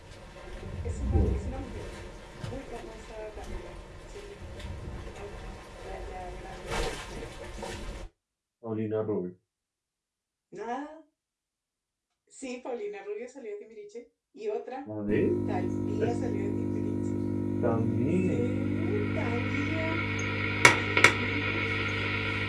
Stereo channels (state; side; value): identical; both; correlation 1.00